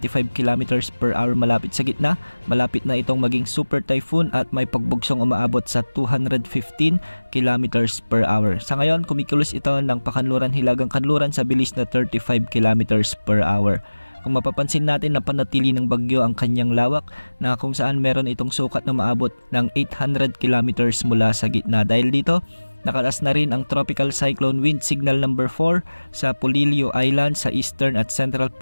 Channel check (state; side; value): inverted; both; correlation -1.00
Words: km per hour malapit sa gitna. Malapit na itong maging super typhoon at may pagbugsong umaabot sa 215 km per hour. Sa ngayon, kumikilos ito ng pakanluran hilagang kanluran sa bilis na 35 km per hour. Kung mapapansin natin na panatili ng bagyo ang kanyang lawak na kung saan meron itong sukat na maabot ng 800 km mula sa gitna. Dahil dito, nakataas na rin ang Tropical Cyclone Wind Signal number 4 sa Polillo Island sa eastern at central